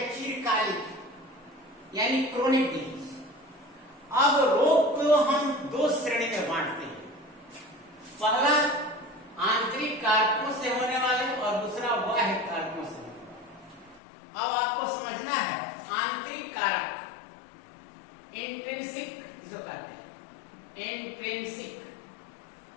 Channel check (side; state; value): right; drops out; at 14.0 s